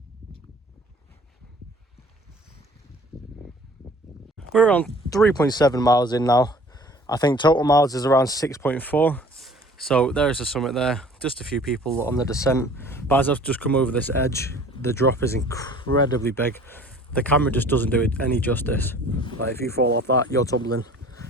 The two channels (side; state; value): both; normal; correlation 0.50